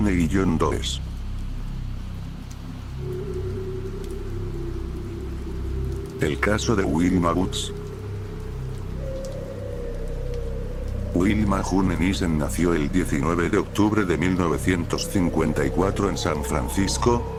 y John Does. El caso de Wilma Woods. Wilma June Nissen nació el 19 de octubre de 1954 en San Francisco,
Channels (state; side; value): identical; both; correlation 1.00